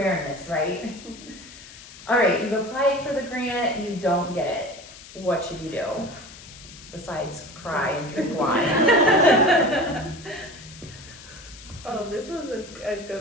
right? All right, you've applied for the grant, you don't get it. What should you do? Besides cry and drink wine. Oh, this was a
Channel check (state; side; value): noise; left; hiss, 18 dB below the sound